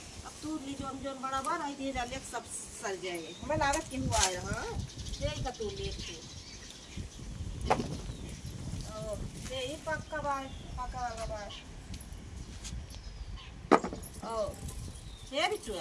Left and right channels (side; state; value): both; identical; correlation 1.00